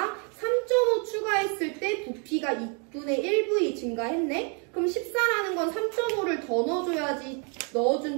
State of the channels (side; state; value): left; quieter; 37.4 dB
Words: 3.5 추가했을 때 부피가 2분의 1V 증가했네? 그럼 14라는 건 3.5를 더 넣어줘야지